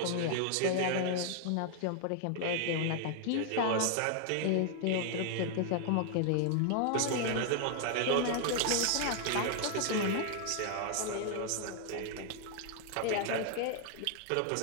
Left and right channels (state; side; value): different; both; correlation 0.00